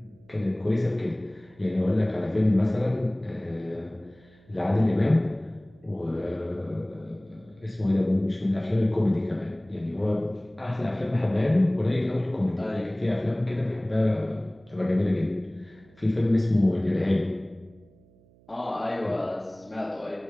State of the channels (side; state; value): right; noise; hum, 29 dB below the sound